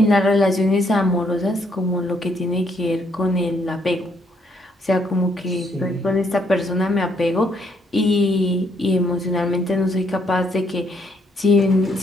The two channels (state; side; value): normal; both; correlation 0.71